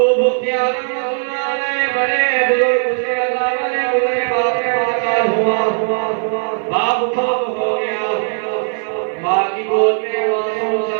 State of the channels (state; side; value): silent; left; 55 dB below the other